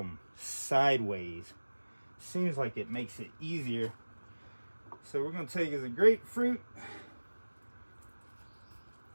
sideways. Seems like it makes it easier. So we're gonna take as a grapefruit.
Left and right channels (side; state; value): both; inverted; correlation -1.00